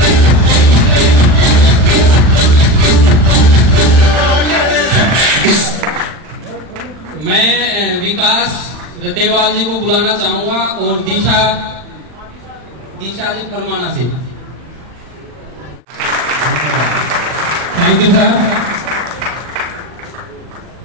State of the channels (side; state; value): left; late; 40 ms